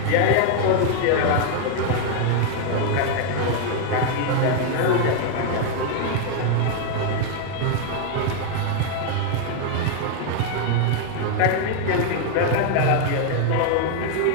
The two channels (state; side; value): different; both; correlation 0.00